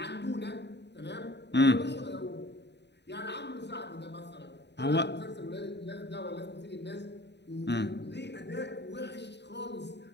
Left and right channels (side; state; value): right; late; 0.50 ms